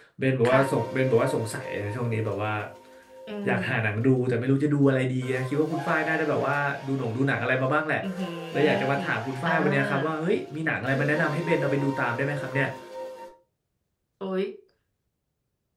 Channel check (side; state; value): both; identical; correlation 1.00